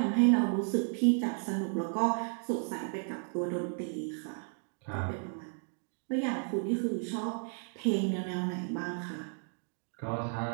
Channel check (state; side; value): silent; left; 56 dB below the other